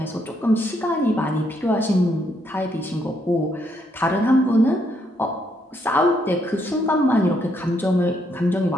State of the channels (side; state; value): both; normal; correlation 0.74